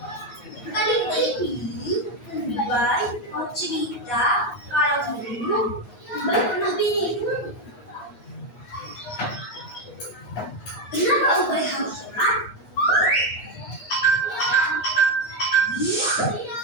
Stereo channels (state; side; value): late; right; 8.3 ms